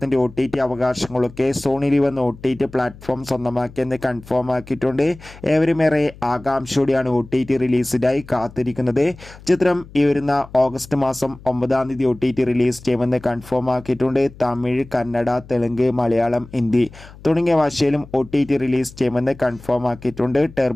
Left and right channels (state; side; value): noise; left; hum, 20 dB below the sound